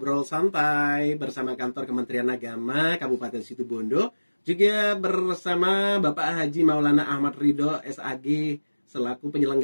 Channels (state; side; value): inverted; both; correlation -1.00